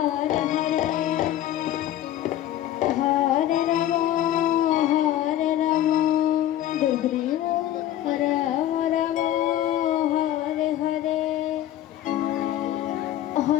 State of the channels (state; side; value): quieter; right; 12.7 dB